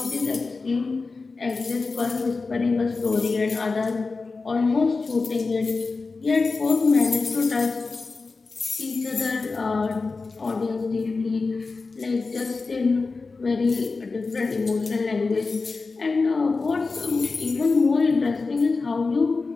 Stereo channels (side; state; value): right; quieter; 4.1 dB